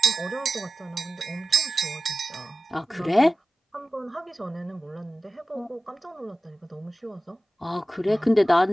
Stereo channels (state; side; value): normal; both; correlation 0.95